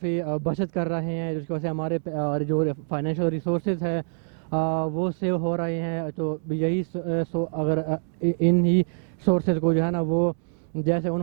बचत कर रहे हैं, जिसकी वजह से हमारे जो फाइनेंशियल रिसोर्सेज है वो सेव हो रहे हैं। तो यही अगर इन ही सोर्सेज को जो है ना वो जैसे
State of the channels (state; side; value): silent; left; digital silence